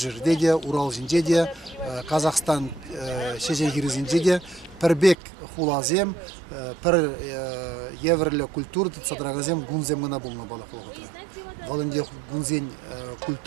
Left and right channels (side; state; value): left; drops out; at 5.2 s